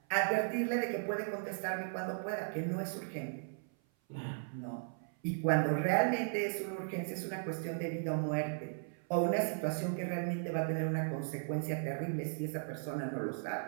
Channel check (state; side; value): silent; left; 53 dB below the other